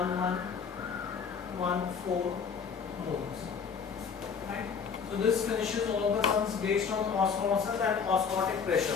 moles. Right? So this finishes all the sums based on osmosis and osmotic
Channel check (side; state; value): right; quieter; 6.2 dB